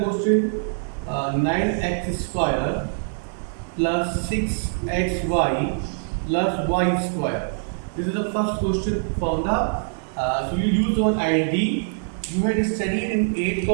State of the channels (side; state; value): left; silent; 60 dB below the other